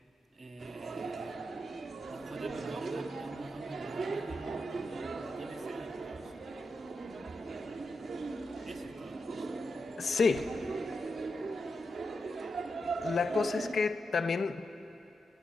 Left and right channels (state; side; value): normal; both; correlation 0.86